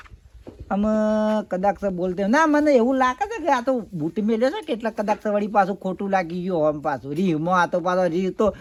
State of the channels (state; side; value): identical; both; correlation 1.00